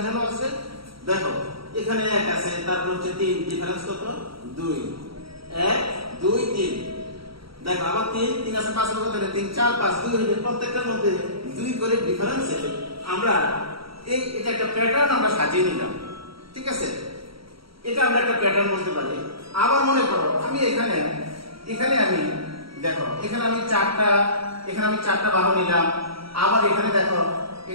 আছে, দেখো এখানে 1 আছে, তারপর হচ্ছে 3, ডিফারেন্স কত? 2, 1, 2, 3। দেখো আবার 3 আছে, 5 কত হলো? 3, 4, 5, 2 হলো। প্রত্যেকটার মধ্যে 2 করে ডিফারেন্সে আমরা এটা একটা প্যাটার্ন আমরা সাজিয়ে নিলাম। ঠিক আছে, এটা আমরা একটা প্যাটার্ন বলতে পারি। আবার মনে করো আমি এখানে আমি দেখো এখানে আমি 4টা বাহু নিলাম। আবার এখানে দেখো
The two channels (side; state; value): left; late; 0.75 ms